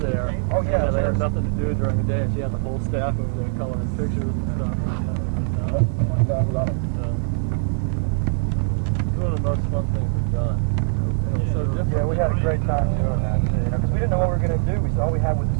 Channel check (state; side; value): silent; left; 61 dB below the other